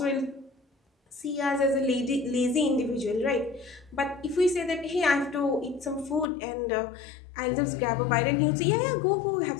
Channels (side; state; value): right; drops out; at 6.2 s